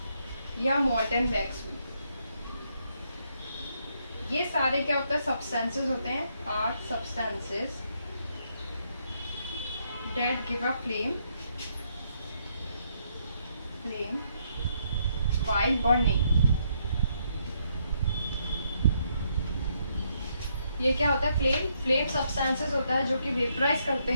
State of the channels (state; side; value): inverted; both; correlation -0.74